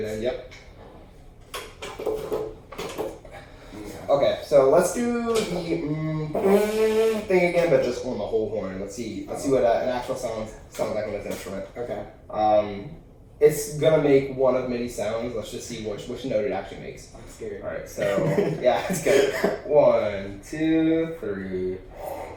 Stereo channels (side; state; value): both; identical; correlation 1.00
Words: in. Yep. Okay, so let's do the thing again, but just on the whole horn. Let's see what an actual sounds like on this instrument. Okay. It's gonna make one of many sounds. Let's just see which note it actually makes. I'm scared. All right, so yeah, it's good. 1, 2, 3.